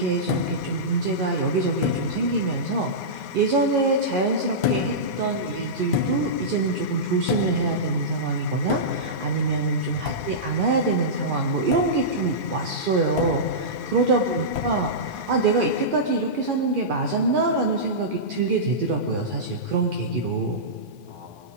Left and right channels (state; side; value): late; left; 2.4 ms